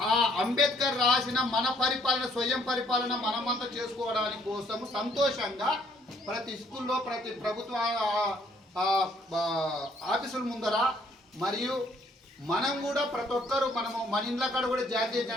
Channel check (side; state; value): both; normal; correlation 0.64